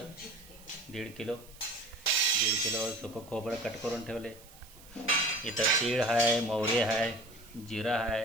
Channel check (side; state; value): right; noise; hiss, 22 dB below the sound